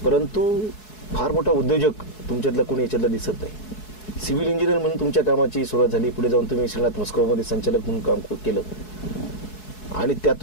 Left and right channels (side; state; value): right; late; 4.7 ms